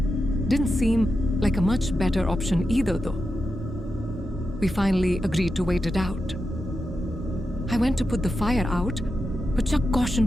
didn't seem like a much better option either, though. We finally agreed to wait it out. I went to put the fire out, but Chuck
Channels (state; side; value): normal; both; correlation 0.89